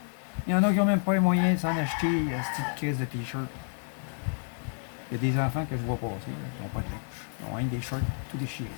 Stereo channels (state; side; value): silent; right; 58 dB below the other